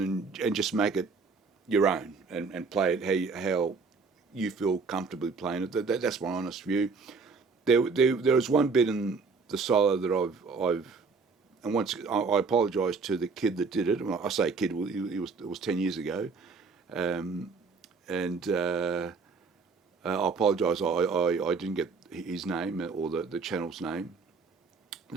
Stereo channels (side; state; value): left; quieter; 4.6 dB